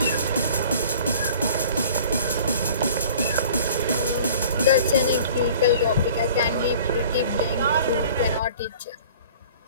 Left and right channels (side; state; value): both; inverted; correlation -0.47